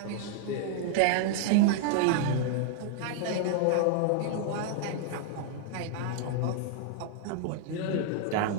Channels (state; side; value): different; both; correlation 0.00